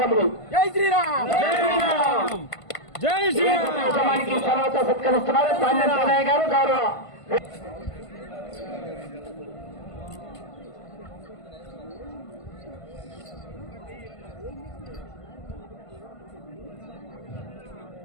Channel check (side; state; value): right; late; 1.5 ms